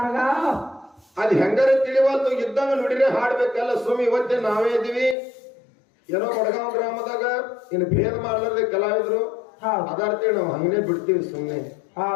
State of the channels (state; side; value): drops out; right; at 5.2 s